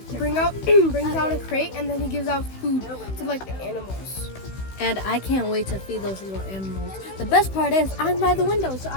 out a crate, and then he gives out food to like the animals. And I can't wait to feed those little animals. The best part is I'm by the window, so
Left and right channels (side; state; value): right; late; 16 ms